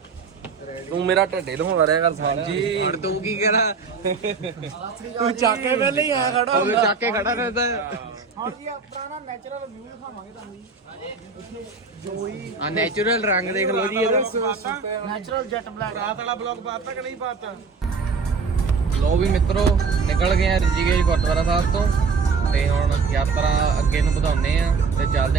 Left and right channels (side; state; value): left; quieter; 4.9 dB